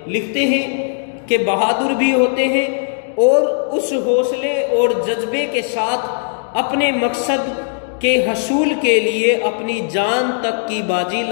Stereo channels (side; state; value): right; silent; digital silence